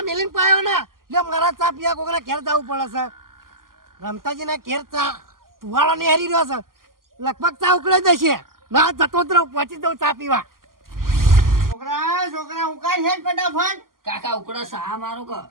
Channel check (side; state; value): left; late; 0.91 ms